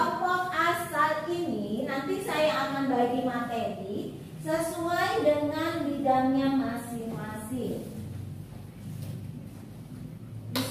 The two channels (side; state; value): both; identical; correlation 1.00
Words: asal ini nanti saya akan bagi materi sesuai dengan bidangnya masing-masing. Di